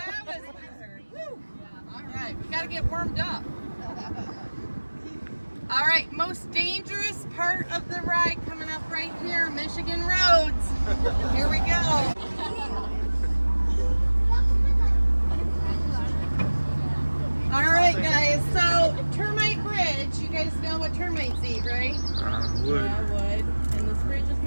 was weird. Woo. All right, we got to get warmed up. All right, most dangerous part of the ride coming up right here, Michigan roads. Here we go. All right, guys, so Termite Bridge, you guys know what termites eat, right? Wood. Yeah, wood. And this bridge is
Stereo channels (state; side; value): inverted; both; correlation -1.00